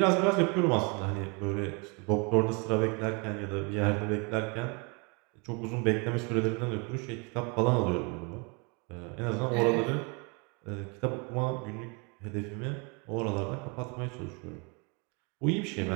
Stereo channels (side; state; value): left; quieter; 31.9 dB